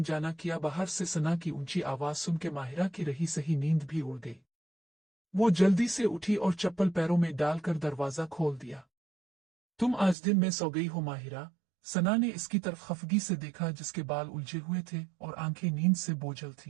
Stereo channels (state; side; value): drops out; left; at 10.2 s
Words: जाना किया। बाहर से सना की ऊंची आवाज सुन के माहिरा की रही सही नींद भी उड़ गई। वो जल्दी से उठी और चप्पल पैरों में डालकर दरवाजा खोल दिया। तुम आज दिन में सो गई हो माहिरा? सना ने इसकी तरफ खफगी से देखा, जिसके बाल उलझे हुए थे और आंखें नींद से बोझल